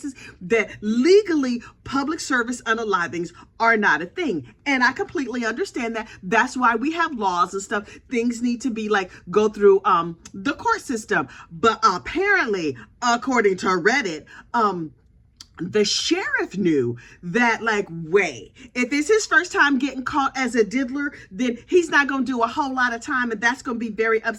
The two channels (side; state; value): both; identical; correlation 1.00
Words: that legally public service unalivings are not a thing. And I completely understand that. That's why we have laws and stuff. Things need to be like, go through the court system. But apparently, according to Reddit, the sheriff knew that, like, wait, if it's his first time getting caught as a diddler, then he's not going to do a whole lot of time, and that's going to be very